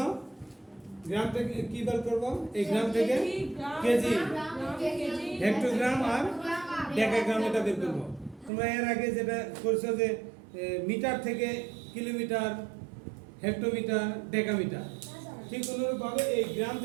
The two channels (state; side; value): drops out; left; at 8.5 s